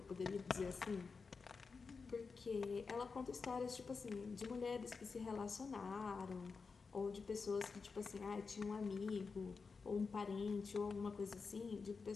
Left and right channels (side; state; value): right; quieter; 4.8 dB